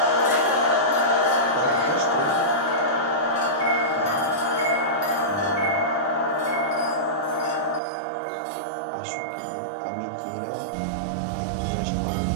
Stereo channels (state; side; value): drops out; left; at 7.8 s